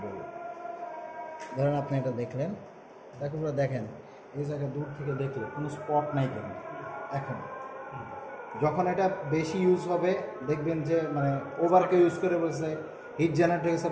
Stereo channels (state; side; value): identical; both; correlation 1.00